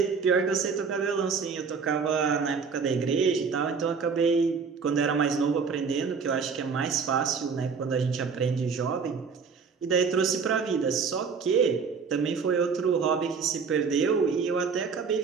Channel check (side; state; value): left; quieter; 5.6 dB